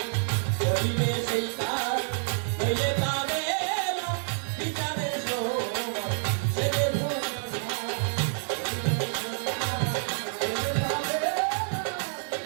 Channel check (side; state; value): left; silent; digital silence